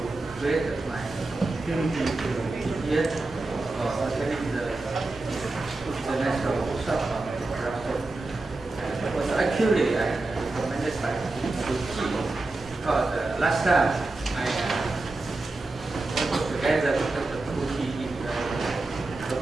created my opportunity to be here for attending the national workshop on production. It was actually recommended by the team because last time I worked together with the community in the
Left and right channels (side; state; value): left; quieter; 3.1 dB